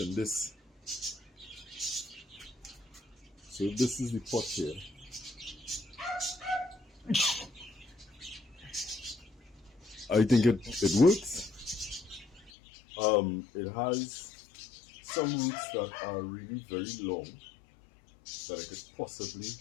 this. So this is the pot here. I think it works. It has some roots that are really very long that I could possibly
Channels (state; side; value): drops out; right; at 12.5 s